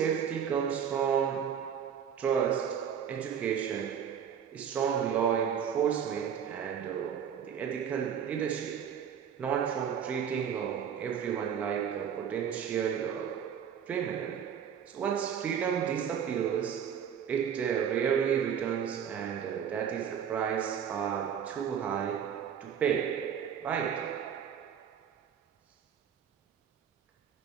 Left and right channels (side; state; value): left; quieter; 8.1 dB